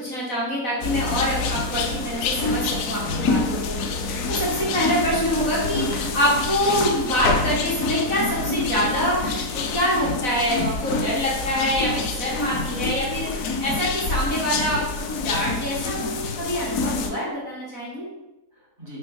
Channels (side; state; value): right; late; 4.0 ms